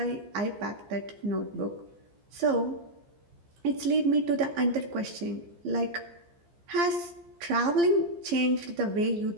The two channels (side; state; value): left; late; 14 ms